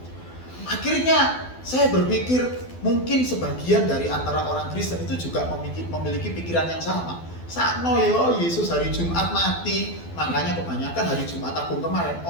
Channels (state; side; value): late; right; 12 ms